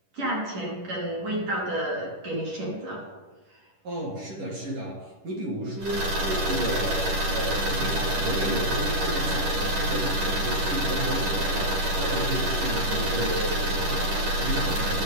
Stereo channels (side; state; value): left; late; 10 ms